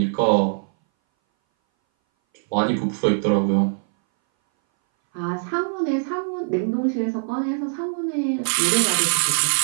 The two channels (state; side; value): silent; left; 60 dB below the other